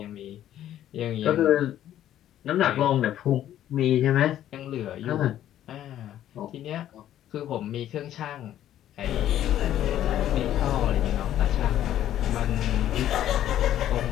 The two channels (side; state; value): right; quieter; 11.9 dB